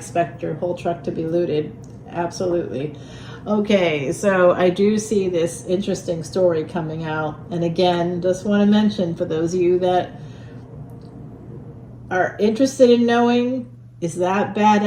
your whole truck to be looted. Absolutely. Okay, so I do see this interesting story coming out. And again, just want to mention for those of you that are interested in knowing, is that bad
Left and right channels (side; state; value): both; identical; correlation 1.00